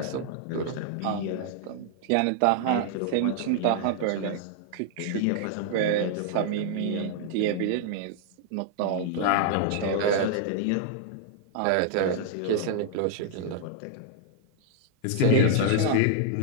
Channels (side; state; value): both; different; correlation -0.01